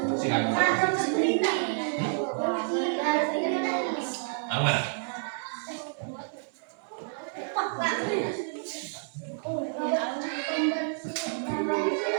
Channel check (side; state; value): left; silent; 58 dB below the other